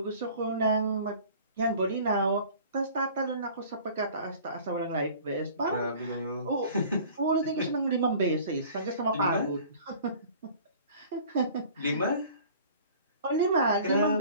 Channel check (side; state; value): both; inverted; correlation -0.47